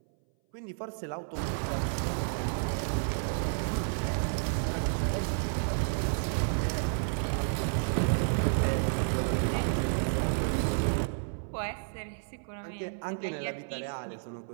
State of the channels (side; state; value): left; silent; 57 dB below the other